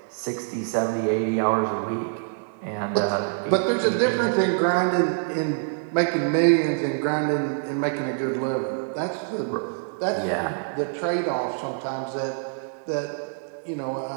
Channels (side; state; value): left; silent; digital silence